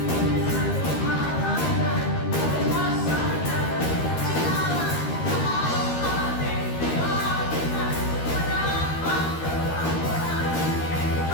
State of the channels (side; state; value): right; late; 13 ms